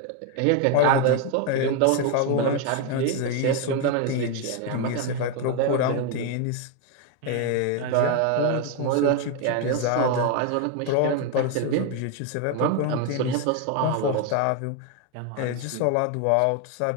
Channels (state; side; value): different; both; correlation 0.01